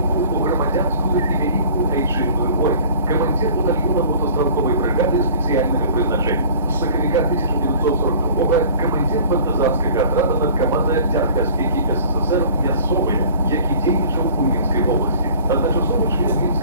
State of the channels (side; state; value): both; inverted; correlation -0.46